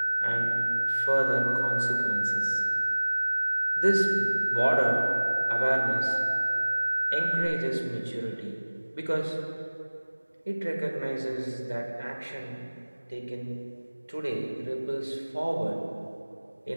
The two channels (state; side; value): inverted; both; correlation -1.00